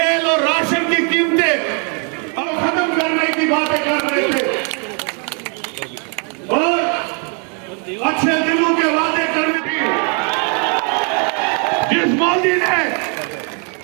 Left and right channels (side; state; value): left; quieter; 38.4 dB